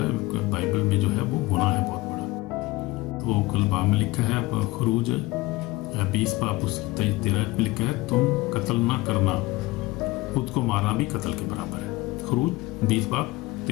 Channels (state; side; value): quieter; right; 20.5 dB